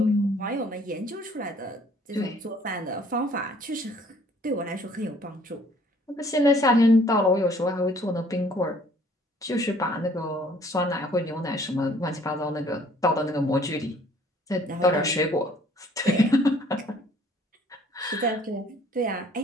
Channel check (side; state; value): both; normal; correlation 0.58